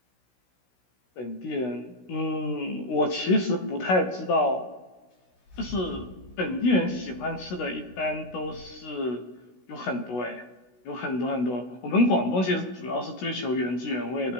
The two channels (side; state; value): right; late; 16 ms